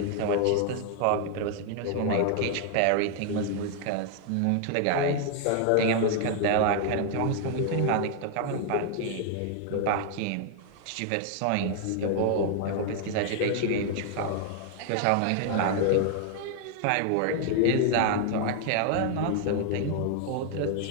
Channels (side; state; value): both; different; correlation 0.00